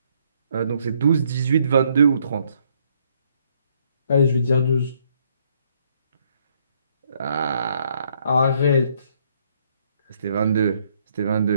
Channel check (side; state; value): both; inverted; correlation -0.69